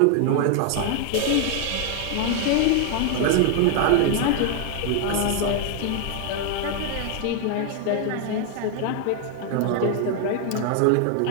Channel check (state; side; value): different; both; correlation 0.00